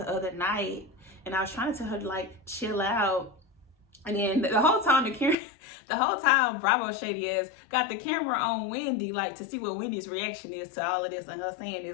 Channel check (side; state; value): right; drops out; at 5.4 s